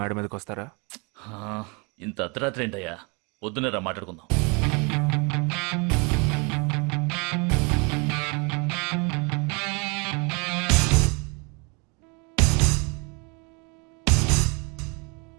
మీదకి వస్తారా? ఇంత అర్ధరాత్రి ఏంటయ్యా? పొద్దునే రా మాట్లాడుకుందాం.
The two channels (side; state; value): left; quieter; 31.5 dB